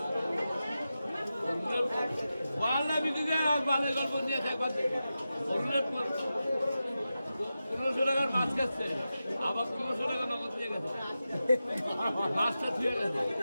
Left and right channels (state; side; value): inverted; both; correlation -0.92